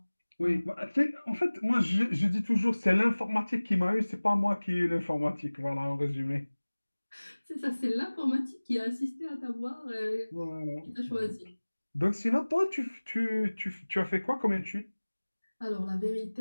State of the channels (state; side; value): inverted; both; correlation -1.00